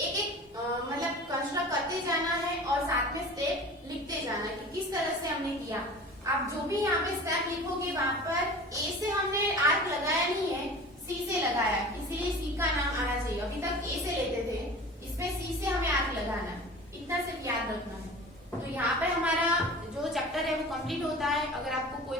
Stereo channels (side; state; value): both; normal; correlation 0.39